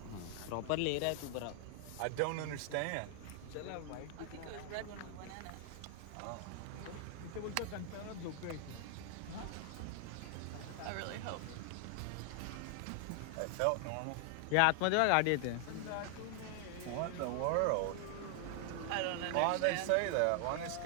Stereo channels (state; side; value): different; both; correlation 0.00